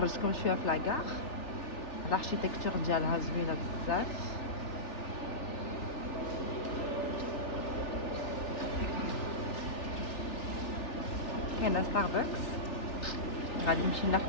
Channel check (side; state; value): right; late; 3.4 ms